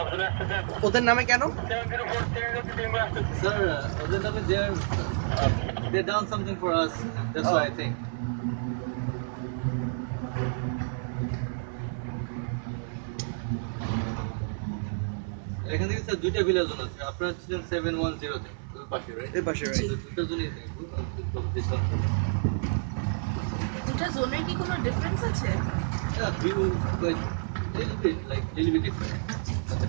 ওদের নামে কেন? স্যার, ওদের নামে they done something for us. That's Oh. why I think. এখান থেকে স্যার দুইটা ভিলা জোন আছে। আপনারা ছিলেন 710 তে, ওই পাশে, রাইট? এই পাশে, রাইট। দুটো জোনই দেখবো। দুটা জোনের কি কোনো ডিফারেন্স আছে? Yeah, view like little bit different.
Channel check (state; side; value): silent; left; digital silence